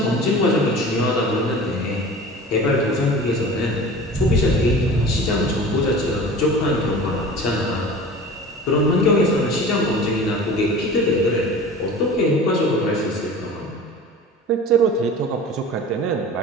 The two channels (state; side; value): normal; both; correlation 0.38